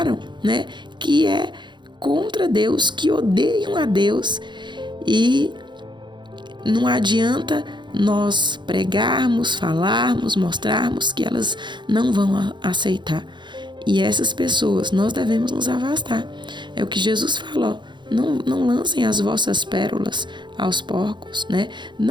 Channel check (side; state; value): left; late; 0.22 ms